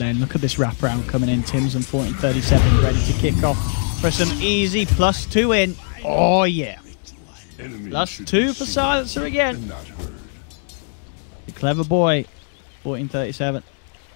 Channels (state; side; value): silent; right; 65 dB below the other